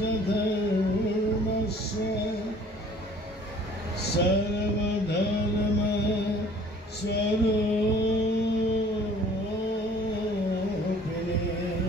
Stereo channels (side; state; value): both; normal; correlation 0.53